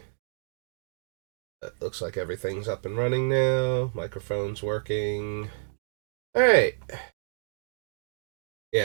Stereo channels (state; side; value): silent; left; digital silence